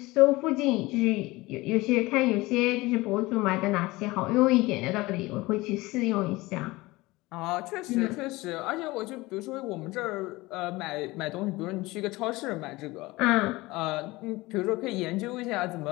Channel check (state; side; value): quieter; right; 20.9 dB